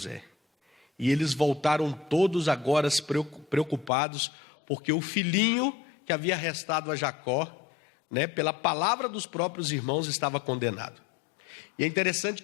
E eles voltaram todos agora preocupados, porque o filhinho que havia restado a Jacó, né, pela palavra dos próprios irmãos, estava condenado. E é interessante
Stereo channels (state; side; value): drops out; right; at 3.9 s